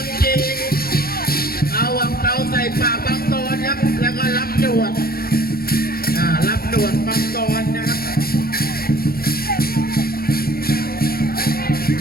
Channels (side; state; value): right; late; 0.44 ms